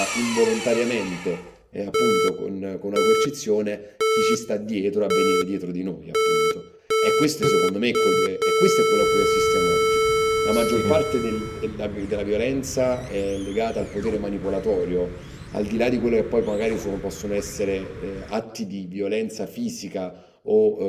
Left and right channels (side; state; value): both; identical; correlation 1.00